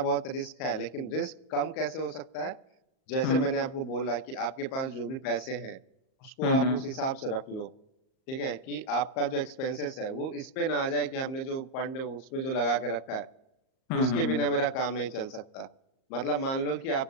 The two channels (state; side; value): late; right; 38 ms